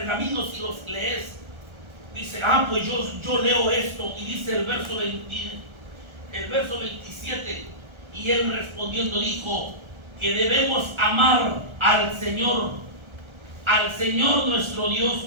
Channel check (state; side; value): late; left; 1.4 ms